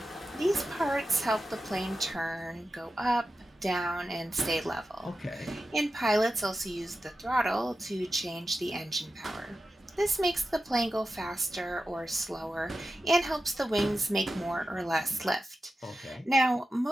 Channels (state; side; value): normal; both; correlation 0.91